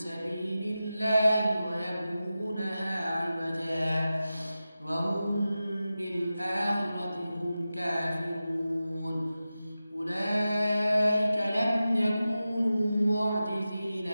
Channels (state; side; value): inverted; both; correlation -0.93